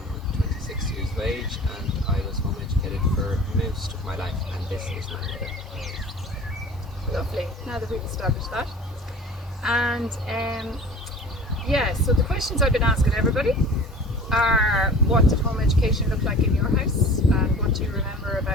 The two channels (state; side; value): normal; both; correlation 0.42